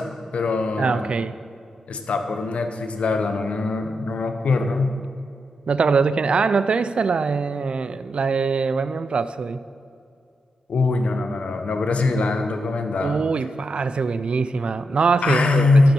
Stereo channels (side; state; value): both; normal; correlation 0.84